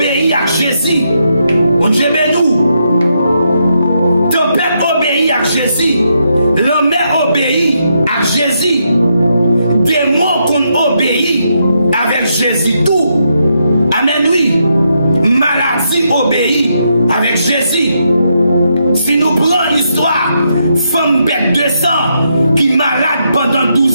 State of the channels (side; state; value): both; inverted; correlation -0.80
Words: à Jésus. Mon Dieu nous. Tempête obéit à Jésus. L'homme obéit à Jésus. Démon qu'on obéit avec Jésus tout. Amen oui. Maladie obéit avec Jésus. Si nous prenons l'histoire, femme bête de sang qui est malade pendant